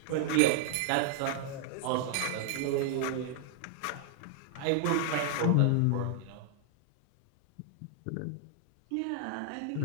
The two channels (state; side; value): different; both; correlation 0.00